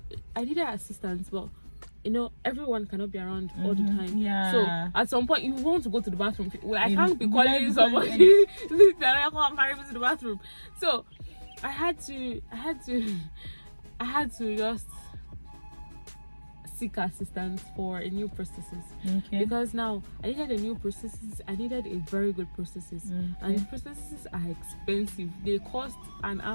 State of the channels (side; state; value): both; inverted; correlation -1.00